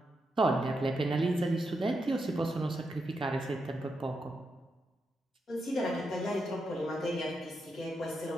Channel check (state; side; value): normal; both; correlation 0.84